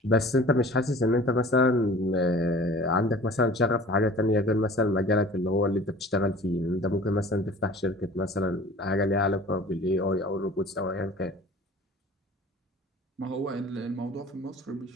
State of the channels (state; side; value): normal; both; correlation 0.45